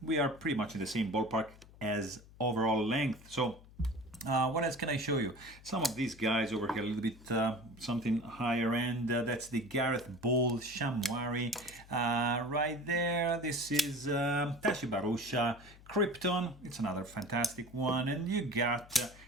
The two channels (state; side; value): noise; left; hum, 21 dB below the sound